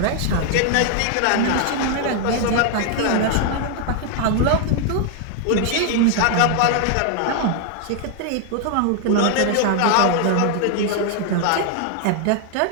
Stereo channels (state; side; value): different; both; correlation 0.00